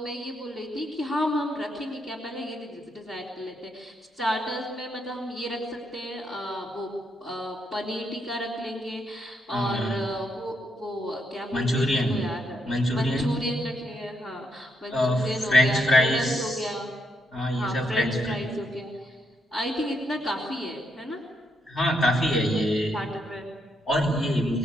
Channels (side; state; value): both; normal; correlation 0.78